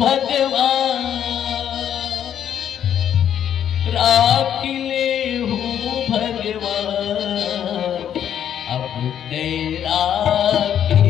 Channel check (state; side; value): quieter; right; 9.6 dB